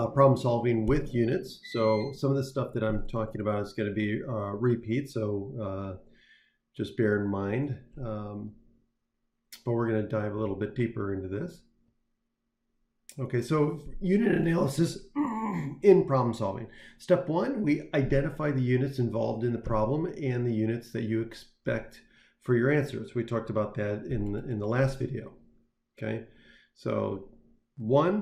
solving with units. So some of the stuff that I'm talking about is going to be repeat, so just bear in mind. But we're going to dive a little bit deeper into this. Okay, so unit analysis in problem solving. Step one, we identify the units involved in the problem and the units that you expect for your answers. We talked about that in the last video. Okay, so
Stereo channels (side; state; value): both; identical; correlation 1.00